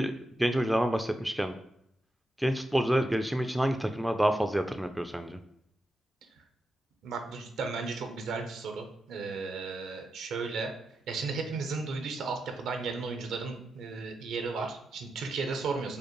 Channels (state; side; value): normal; both; correlation 0.88